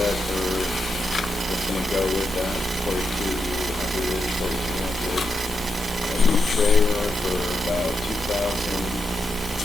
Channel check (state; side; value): normal; both; correlation 0.85